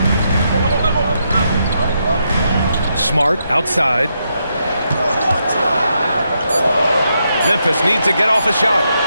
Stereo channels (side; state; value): both; inverted; correlation -0.81